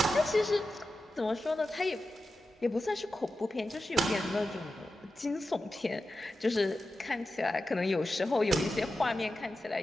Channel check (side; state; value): both; normal; correlation 0.92